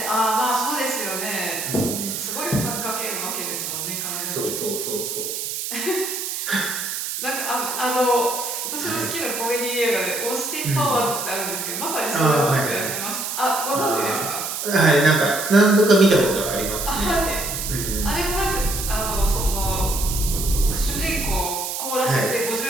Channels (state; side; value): noise; right; hiss, 4 dB below the sound